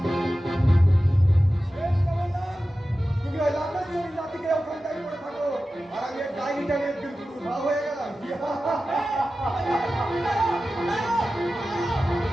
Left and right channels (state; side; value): normal; both; correlation 0.94